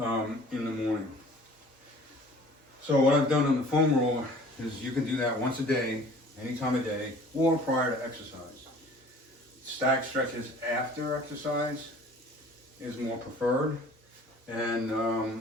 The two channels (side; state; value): both; normal; correlation 0.49